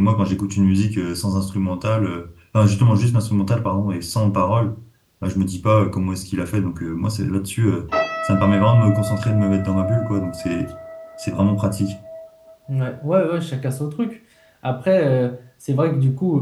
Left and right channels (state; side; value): identical; both; correlation 1.00